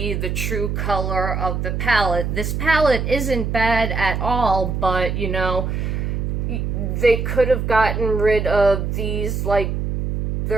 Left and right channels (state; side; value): noise; right; hum, 2 dB below the sound